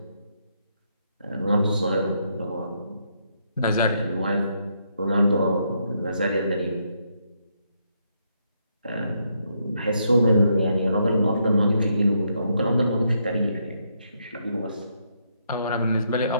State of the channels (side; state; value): both; inverted; correlation -0.76